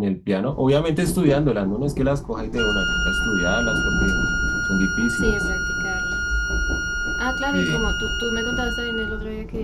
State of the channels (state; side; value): identical; both; correlation 1.00